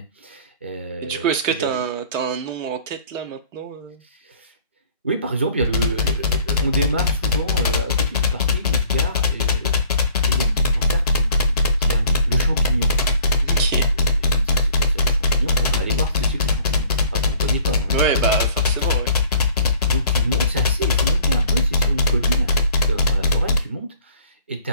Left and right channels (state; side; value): inverted; both; correlation -0.54